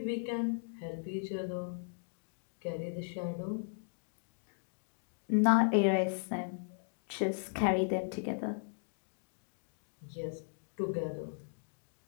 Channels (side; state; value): right; silent; digital silence